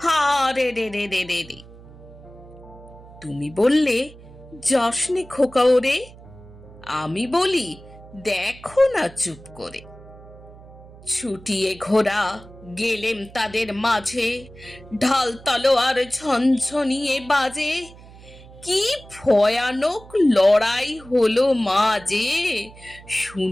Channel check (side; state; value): right; noise; hum, 20 dB below the sound